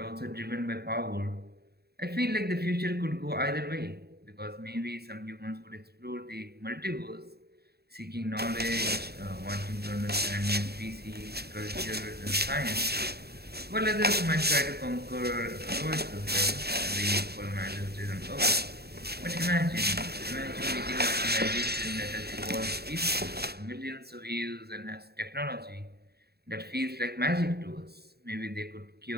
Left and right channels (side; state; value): left; late; 0.47 ms